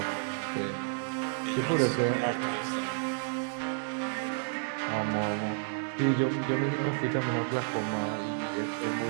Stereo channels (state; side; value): silent; left; digital silence